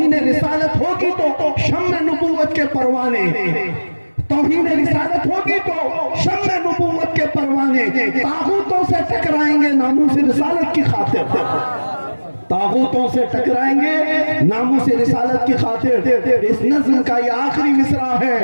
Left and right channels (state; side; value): inverted; both; correlation -1.00